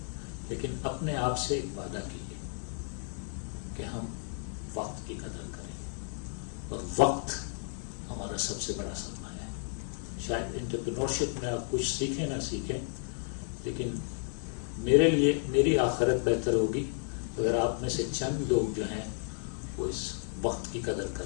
لیکن اپنے آپ سے ایک وعدہ کیجیے کہ ہم وقت کی قدر کریں، اور وقت ہمارا سب سے بڑا سرمایہ ہے. شاید انٹرپرینورشپ میں آپ کچھ سیکھیں نہ سیکھیں، لیکن میرے لیے میری آخرت بہتر ہوگی اگر آپ میں سے چند لوگ جو ہیں وہ اس وقت کی قدر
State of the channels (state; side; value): silent; right; 56 dB below the other